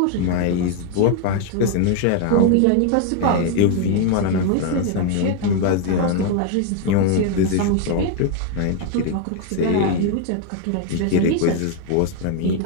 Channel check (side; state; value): both; different; correlation 0.01